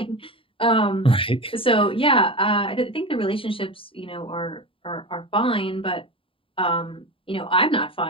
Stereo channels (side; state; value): right; late; 0.26 ms